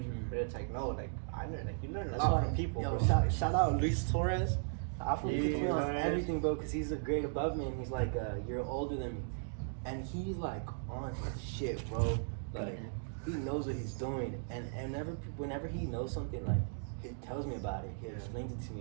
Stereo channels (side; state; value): left; silent; digital silence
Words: but it's like no, like I learn, like you learn a lot from people. Yo, bro. shout out Luis Torres. Afro Yeah, puts me on Torres. everything, bro, because he's a grade above me and he's like a year older than me. And he's like on his shit, bro. Like he knows what he's doing, and whenever he knows something, like he tells me about it. He explains it to